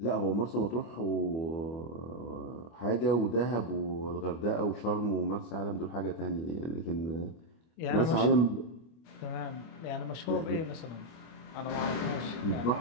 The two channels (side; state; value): right; late; 25 ms